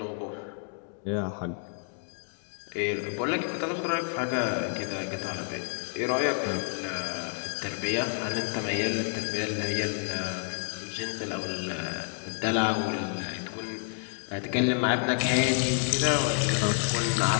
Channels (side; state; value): right; silent; 58 dB below the other